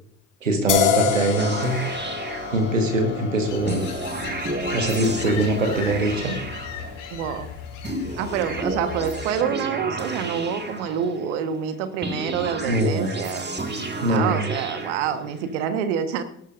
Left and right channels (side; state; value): both; normal; correlation 0.20